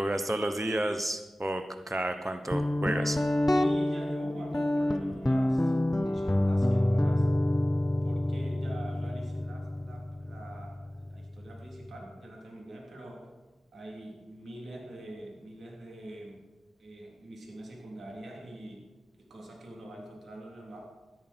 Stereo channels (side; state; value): both; normal; correlation 0.97